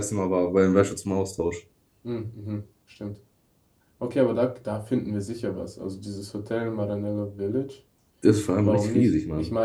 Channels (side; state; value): both; identical; correlation 1.00